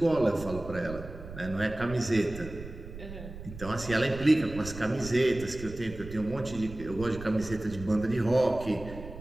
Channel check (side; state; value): right; noise; rumble, 13 dB below the sound